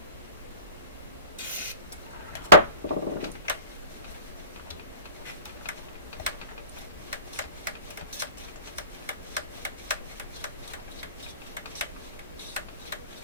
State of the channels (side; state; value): both; inverted; correlation -0.42